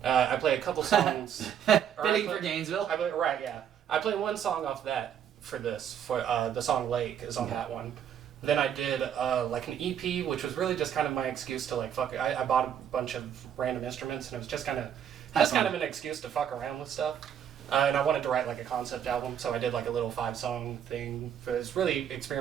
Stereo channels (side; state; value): left; quieter; 9.1 dB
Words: I play a couple songs. Fitting for Gainesville. I play one song off that for this. For the song "Lake" is on that one. Then I did like an EP, which was really just kind of my excuse to like fuck it. I bought a bunch of random instruments, and it was just kind of an excuse to fuck around with stuff. And I wanted to write like a concept album, so I did like a little 5-song thing. It's really